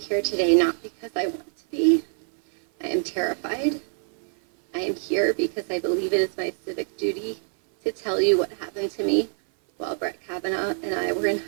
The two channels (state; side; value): silent; left; 57 dB below the other